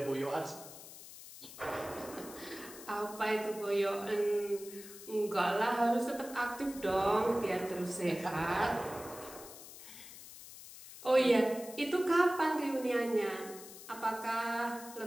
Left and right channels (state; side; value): noise; left; hiss, 15 dB below the sound